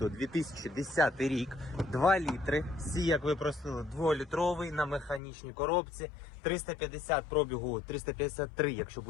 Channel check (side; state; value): right; drops out; at 5.2 s